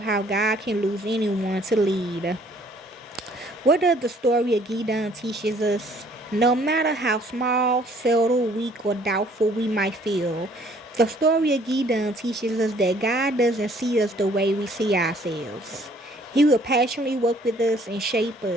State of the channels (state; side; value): normal; both; correlation 0.60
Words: how God can use anyone to lead. What does the story of Gideon teaches us? No matter how small, subtle, weak, or doubtful we might feel, the story of Gideon teaches us that God doesn't see us the way we see ourselves. He will passionately work with us and shape